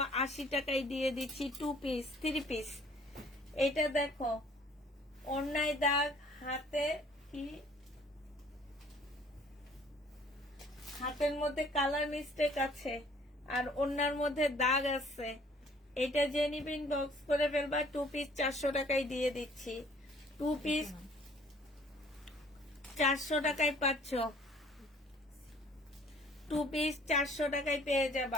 টাকায় দিয়ে দিচ্ছি। 2 পিস 3 পিস। এটা দেখো ওন্নায় দাগ, হাতে কি, হাতের মধ্যে কালার মিস্টেক আছে আর ওন্নার মধ্যে দাগ আছে। এটা যে নিবে ইনবক্স করে ফেলবা। 2 পিস 400 টাকায় দিয়ে দিচ্ছি। 2 পিস 400 টাকায় পাচ্ছ। 2 পিস 400 টাকায় পেয়ে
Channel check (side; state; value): both; normal; correlation 0.56